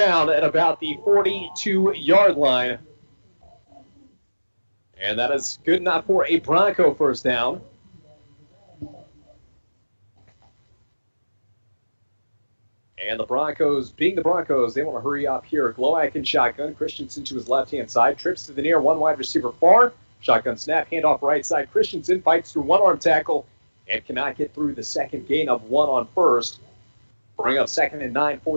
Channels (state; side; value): inverted; both; correlation -1.00